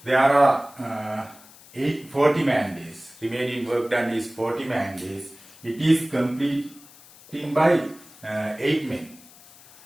there are 40 man days. Remaining work done is 40 man days. It is completing by 8 men.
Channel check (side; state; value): left; noise; hiss, 23 dB below the sound